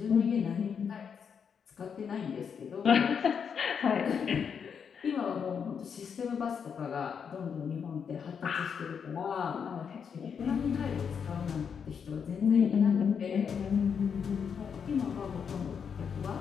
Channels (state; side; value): quieter; right; 6.9 dB